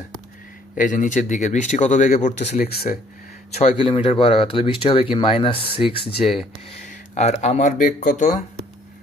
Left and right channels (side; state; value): both; normal; correlation 0.61